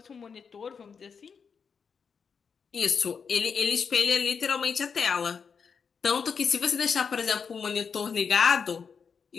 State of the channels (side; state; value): right; quieter; 6.1 dB